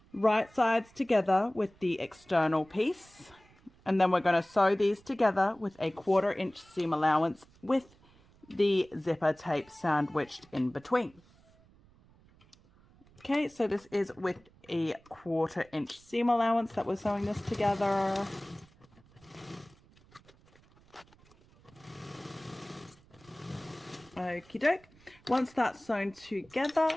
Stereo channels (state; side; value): noise; right; rumble, 28 dB below the sound